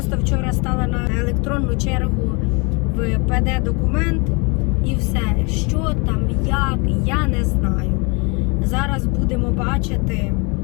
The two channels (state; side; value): quieter; right; 30.4 dB